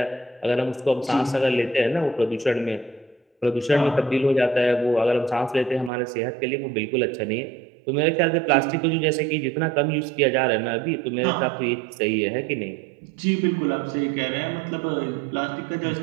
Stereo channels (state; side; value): drops out; left; at 5.9 s